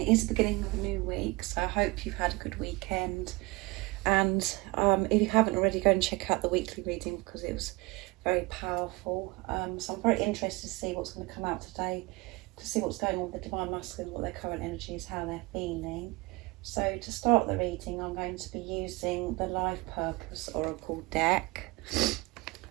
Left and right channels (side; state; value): left; quieter; 24.1 dB